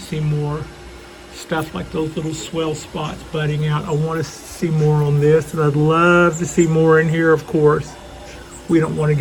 more stuff like those little swell spots budding out. I want to see more on this, and I'd love to see more in here, of course. We don't want to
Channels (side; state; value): both; identical; correlation 1.00